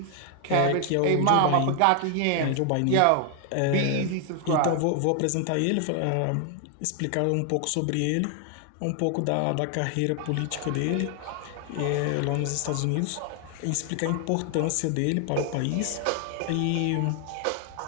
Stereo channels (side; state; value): both; different; correlation 0.00